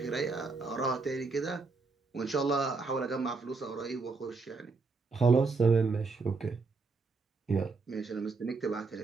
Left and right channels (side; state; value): left; quieter; 4.1 dB